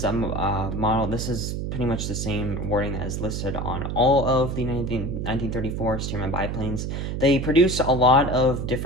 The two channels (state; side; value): noise; right; hum, 3 dB below the sound